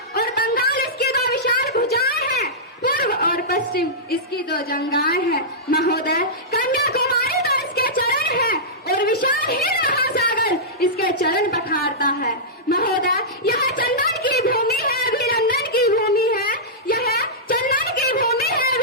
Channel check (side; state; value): both; normal; correlation -0.14